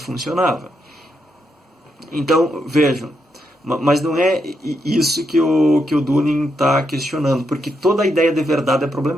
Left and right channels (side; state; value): both; normal; correlation 0.81